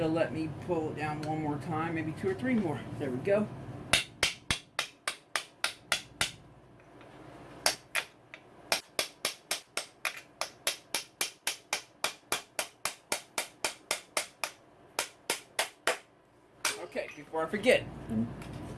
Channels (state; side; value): identical; both; correlation 1.00